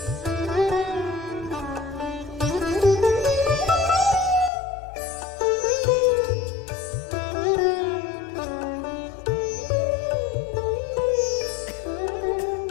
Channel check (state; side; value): drops out; right; at 4.5 s